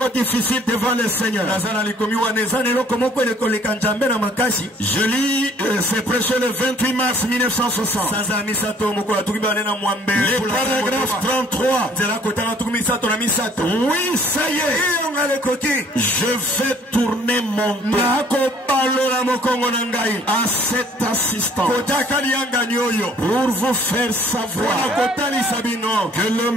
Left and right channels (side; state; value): both; normal; correlation 0.58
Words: difficile devant le Seigneur? Je lis, c'est prêché le 28 mars 1960. Le paragraphe 33. Oui, ça y est. Je vais tourner mon dos à cet assistant pour vous faire savoir que le